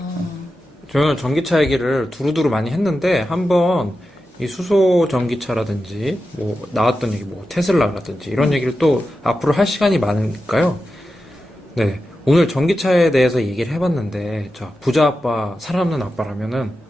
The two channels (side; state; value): both; normal; correlation 0.91